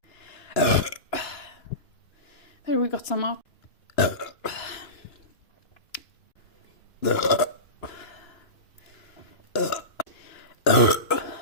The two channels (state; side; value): late; right; 2.9 ms